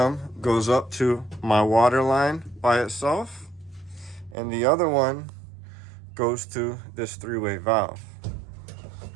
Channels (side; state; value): left; drops out; at 4.4 s